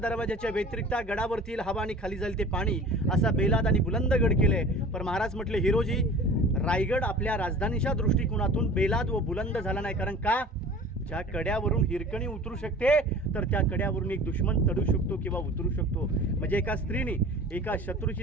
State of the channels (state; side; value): normal; both; correlation 0.42